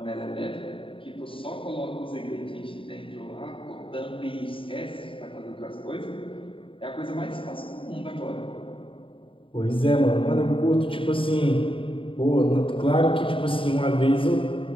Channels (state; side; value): late; right; 0.25 ms